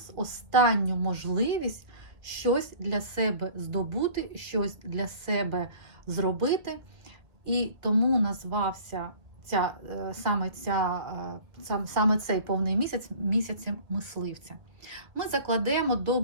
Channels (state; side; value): late; left; 1.5 ms